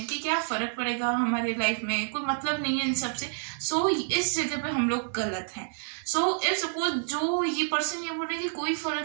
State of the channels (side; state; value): left; silent; digital silence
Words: कि क्या फ़र्क पड़ेगा हमारे लाइफ में, कोई मतलब नहीं है इन सब से. सो इस जगह पे हम लोग गलत हैं. सो इफ सपोज जो ये पर्सन ये बोल रहे हैं कि कोई